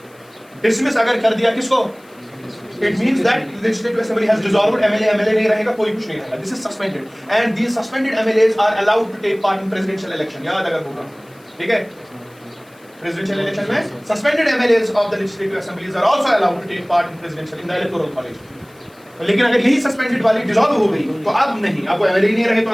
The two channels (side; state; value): left; noise; hiss, 30 dB below the sound